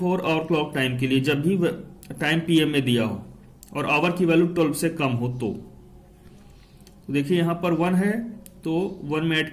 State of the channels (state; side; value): identical; both; correlation 1.00